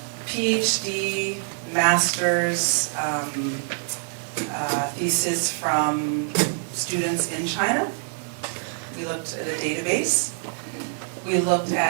PhD, master's, thesis from students in China. We looked at a database. We looked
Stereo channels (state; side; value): silent; left; 62 dB below the other